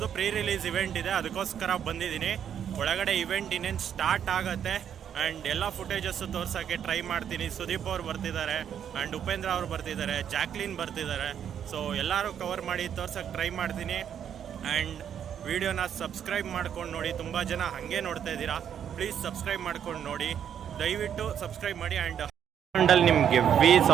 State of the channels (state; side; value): quieter; left; 8.9 dB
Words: ಪ್ರೀ ರಿಲೀಸ್ ಇವೆಂಟ್ ಇದೆ, ಅದಕ್ಕೋಸ್ಕರ ಬಂದಿದ್ದೀನಿ. ಒಳಗಡೆ ಇವೆಂಟ್ ಇನ್ನೇನು ಸ್ಟಾರ್ಟ್ ಆಗುತ್ತೆ ಆ್ಯಂಡ್ ಎಲ್ಲ ಫುಟೇಜಸ್ಸು ತೋರ್ಸೋಕ್ಕೆ ಟ್ರೈ ಮಾಡ್ತೀನಿ. ಸುದೀಪ್ ಅವ್ರು ಬರ್ತಿದ್ದಾರೆ ಆ್ಯಂಡ್ ಉಪೇಂದ್ರ ಅವ್ರು ಬರ್ತಿದ್ದಾರೆ, ಜಾಕ್ಲಿನ್ ಬರ್ತಿದ್ದಾರೆ. ಸೊ ಎಲ್ಲರೂ ಕವರ್ ಮಾಡಿ ತೋರ್ಸೋಕ್ಕೆ ಟ್ರೈ ಮಾಡ್ತೀನಿ. ಆ್ಯಂಡ್ ವಿಡಿಯೋನ ಸಬ್ಸ್ಕ್ರೈಬ್ ಮಾಡ್ಕೊಂಡು ನೋಡಿ. ತುಂಬ ಜನ ಹಾಗೆ ನೋಡ್ತಾ ಇದ್ದೀರಾ, ಪ್ಲೀಸ್ ಸಬ್ಸ್ಕ್ರೈಬ್ ಮಾಡ್ಕೊಂಡು ನೋಡಿ, ದಯವಿಟ್ಟು ಸಬ್ಸ್ಕ್ರೈಬ್ ಮಾಡಿ. ಆ್ಯಂಡ್ ಅಲ್ಲಿ ನಿಮಗೆ ವಿ